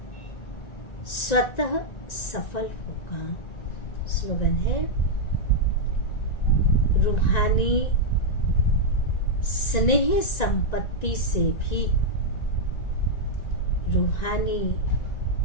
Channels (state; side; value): late; right; 1.9 ms